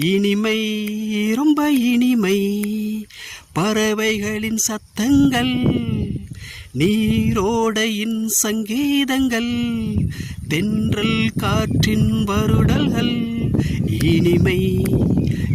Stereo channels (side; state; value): both; identical; correlation 1.00